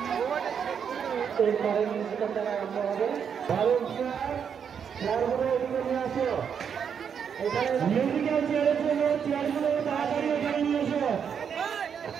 এরপরে মিউজিক্যাল দ্বারা আরম্ভ হবে। ভালো চেয়ারগুলো এদিকে নিয়ে আসো। এখানে মিউজিক্যাল চেয়ারের জন্য চেয়ারগুলো তাড়াতাড়ি এখানে নিয়ে এসো।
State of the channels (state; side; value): quieter; left; 7.4 dB